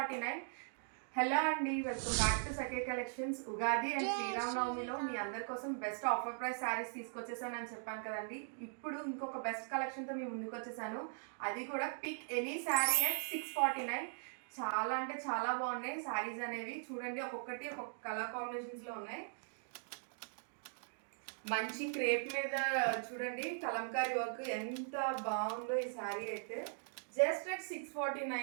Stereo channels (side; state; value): left; silent; digital silence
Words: Hello అండి, welcome back to Sakhi collections. Ugadi and శ్రీరామనవమిలో మీ అందరి కోసం బెస్ట్ ఆఫర్ ప్రైస్ శారీస్ తీసుకొచ్చేసానని చెప్పాను కదండి. ఇప్పుడు ఇంకొక బెస్ట్ కలెక్షన్తో మీ ముందుకు వచ్చేసాను. అది కూడా పిక్ ఎనీ శారీ అట్ 649. చాలా అంటే చాలా బాగున్నాయి శారీస్ అనేవి. చూడండి, ఒక్కొక్కటి ఒక్కొక్క కలర్ కాంబినేషన్స్లో ఉన్నాయి. మంచి క్రేప్ మీద చూడండి కలంకారీ వర్క్ ఎంత బాగుందో ఈ శారీ అయితే. Just at